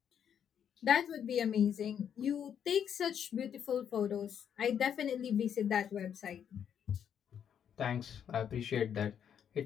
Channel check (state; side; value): quieter; right; 8.6 dB